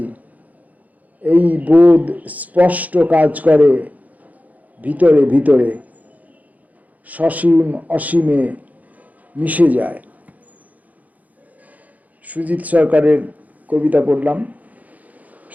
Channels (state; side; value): late; left; 0.077 ms